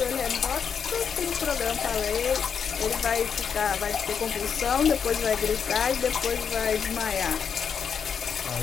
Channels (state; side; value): quieter; right; 6.9 dB